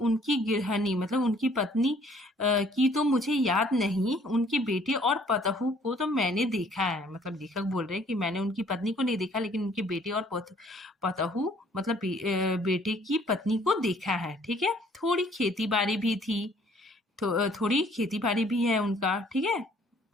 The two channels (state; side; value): normal; both; correlation 0.59